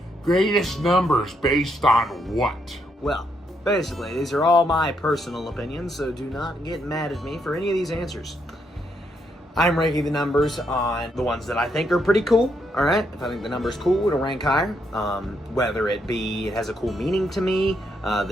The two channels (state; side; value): normal; both; correlation 0.77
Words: greatest numbers based on what? well, basically, these are all my personal opinions, so do not get mad at me for any of these answers. I'm ranking the numbers on the ones that I think are pretty cool, alright? If I think the number's cool, it'll rank higher. Whether it be it has a cool meaning to me,